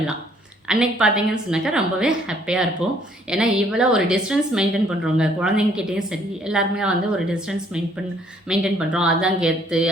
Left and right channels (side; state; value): both; normal; correlation 0.63